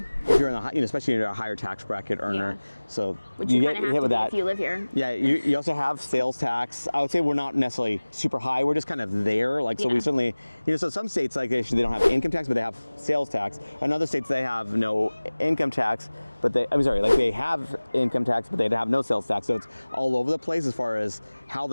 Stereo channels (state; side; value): inverted; both; correlation -1.00